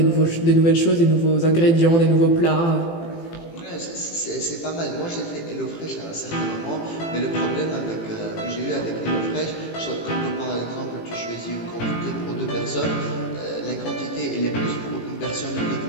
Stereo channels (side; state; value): right; late; 18 ms